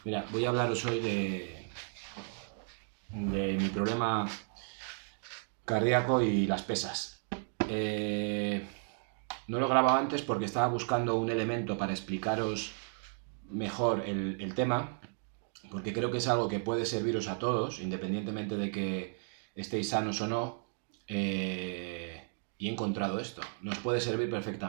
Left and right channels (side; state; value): left; silent; 55 dB below the other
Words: Mira, voy a hablaros hoy de mi problema cardíaco y las pesas. No lo grababa antes porque estaba buscando un elemento para explicaros mejor el tema, porque creo que es algo que puede serviros a todos, independientemente de que estéis sanos o no, y he encontrado esto. Nos puede servir